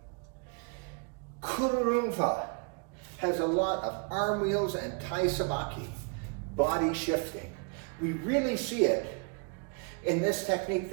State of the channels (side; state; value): left; quieter; 34.9 dB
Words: Kururunfa has a lot of arm wheels and tai sabaki, body shifting. We really see it in this technique